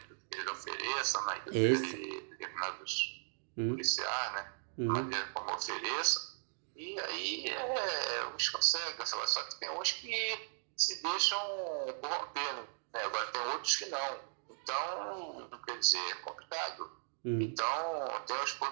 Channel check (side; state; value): left; silent; digital silence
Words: eles ofereçam, né, que determinados policiais, né, maneira como ofereçam, e aí uns conseguem, só que tem uns que se deixam corromper, né? Agora tem outros que não. Então, quer dizer, é complicado. Então, tem os